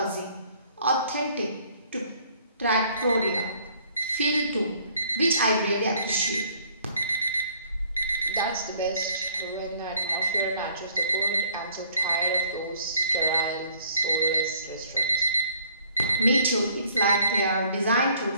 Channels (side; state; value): both; inverted; correlation -0.61